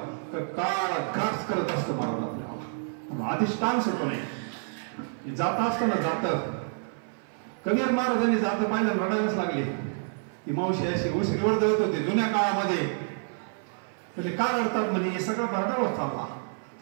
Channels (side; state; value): left; silent; 58 dB below the other